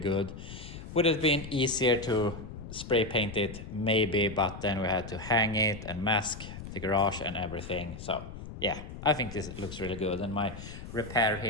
Would it have been easier to spray paint it? Maybe, but then we had to hang it and mask the garage and everything. So yeah, I think this looks really good. And my repair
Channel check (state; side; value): noise; left; rumble, 11 dB below the sound